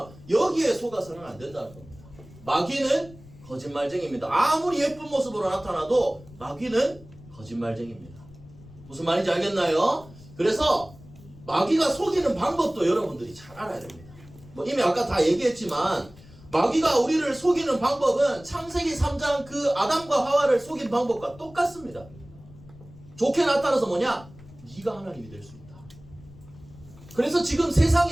여기에 속아서는 안 된다는 겁니다. 마귀는 거짓말쟁이입니다. 아무리 예쁜 모습으로 나타나도 마귀는 거짓말쟁이입니다. 무슨 말인지 알겠나요? 그래서 마귀가 속이는 방법도 여러분들이 잘 알아야 됩니다. 이미 아까 다 얘기했지만 마귀가 우리를 속이는 방법은 창세기 3장 그 아담과 하와를 속인 방법과 똑같습니다. 좋게 나타나서 뭐냐? 네가 하나님이 될 수 있다. 그래서 지금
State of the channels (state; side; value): noise; left; rumble, 21 dB below the sound